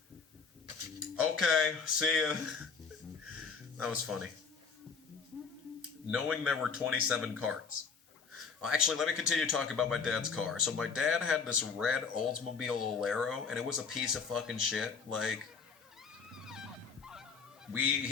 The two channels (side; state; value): right; quieter; 5.4 dB